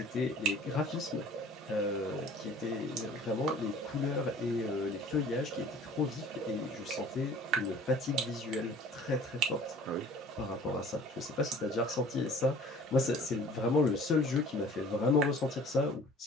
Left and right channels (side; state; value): both; normal; correlation 0.48